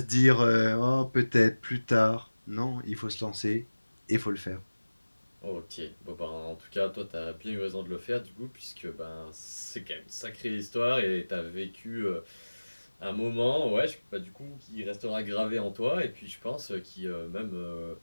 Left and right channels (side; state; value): both; inverted; correlation -1.00